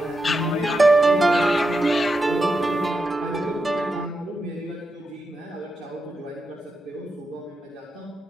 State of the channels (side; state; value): both; normal; correlation 0.87